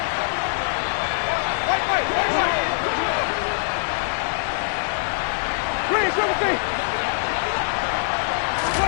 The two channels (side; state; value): right; silent; digital silence